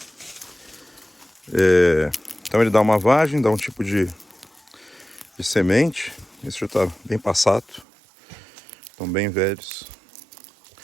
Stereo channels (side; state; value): left; drops out; at 7.9 s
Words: Então ele dá uma vagem, dá um tipo de semente. Esse já está bem passado. Estão bem velhos.